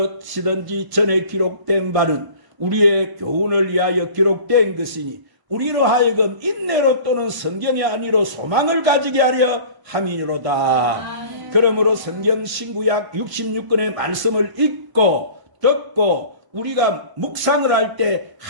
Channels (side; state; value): left; late; 1.0 ms